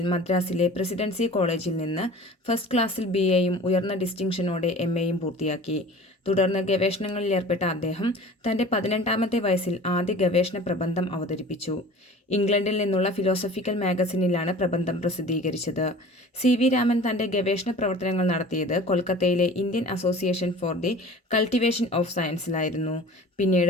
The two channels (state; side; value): normal; both; correlation 0.42